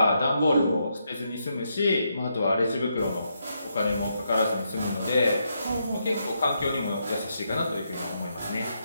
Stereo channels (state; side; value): inverted; both; correlation -0.80